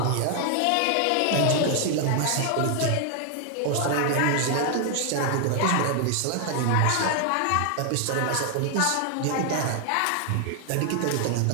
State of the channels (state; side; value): different; both; correlation 0.00